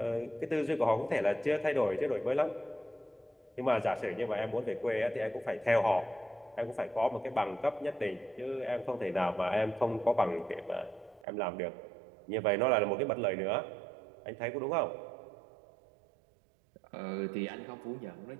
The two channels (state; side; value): drops out; left; at 11.2 s